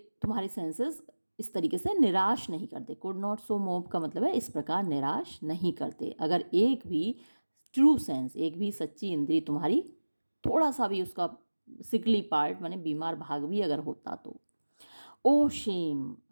तुम्हारे सेंसेस इस तरीके से निराश नहीं करते। कुड नॉट सो मोव का मतलब है इस प्रकार निराश नहीं करते। अगर एक भी ट्रू सेंस, एक भी सच्ची इंद्री तुम्हारी थोड़ा सा भी उसका सिकली पार्ट माने बीमार भाग भी अगर होता तो। ओ शेम,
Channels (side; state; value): both; inverted; correlation -1.00